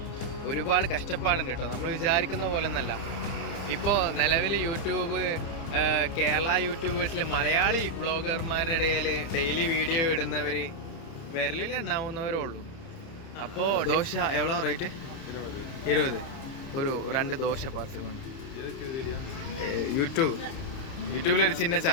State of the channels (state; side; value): late; right; 30 ms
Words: ഒരുപാട് കഷ്ടപ്പാടുണ്ട് കേട്ടോ. നമ്മൾ വിചാരിക്കുന്ന പോലെ ഒന്നല്ല. ഇപ്പോൾ നിലവിൽ യൂട്യൂബ് കേരള യൂട്യൂബേഴ്സിൽ മലയാളി ബ്ലോഗർമാരുടെ ഇടയിൽ ഡെയിലി വീഡിയോ ഇടുന്നവർ വിരലിൽ ഉണ്ടാവുന്നവരേ ഉള്ളൂ. അപ്പോൾ ദോശ എவ்வளோ റേറ്റ്? 20. ഒരു 2 ദോശ പാർസൽ കൊണ്ട്. യൂട്യൂബിലൊരു ചിന്ന